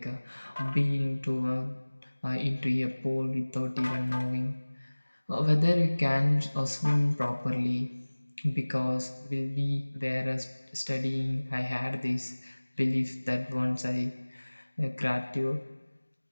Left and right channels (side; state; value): both; inverted; correlation -1.00